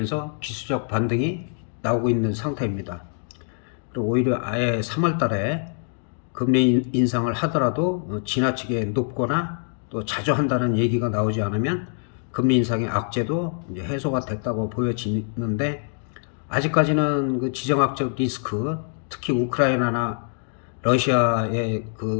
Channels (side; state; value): right; silent; digital silence